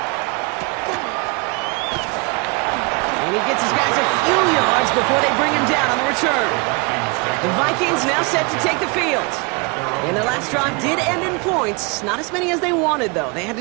And he gets his guys a few yards before they bring him down on the return. The Vikings now set to take the field. And their last drive did end in points. Not as many as they wanted, though. They had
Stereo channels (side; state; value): left; quieter; 30.1 dB